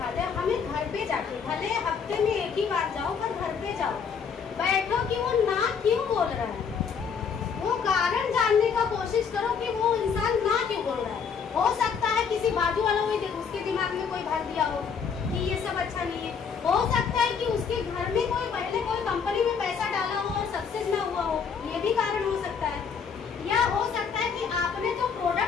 हैं। हमें घर पे जाके, भले हफ्ते में 1 ही बार जाओ, पर घर पे जाओ, बैठो कि वो ना क्यों बोल रहा है, वो कारण जानने का कोशिश करो कि वो इंसान ना क्यों बोल रहा है। हो सकता है किसी बाजू वाला उसके दिमाग में कोई भर दिया हो कि ये सब अच्छा नहीं है। हो सकता है कि उसके घर में कोई पहले कोई कंपनी में पैसा डाला हो और सक्सेस ना हुआ हो, ये भी कारण हो सकता है। या हो सकता है कि आपने जो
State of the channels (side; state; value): right; quieter; 6.4 dB